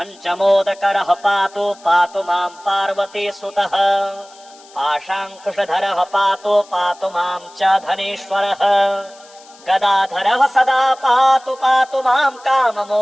पातु मां पार्वतीसुतः पाशाङ्कुशधरः पातु मां च धनेश्वरः गदाधरः सदा पातु मां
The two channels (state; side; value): noise; left; hiss, 24 dB below the sound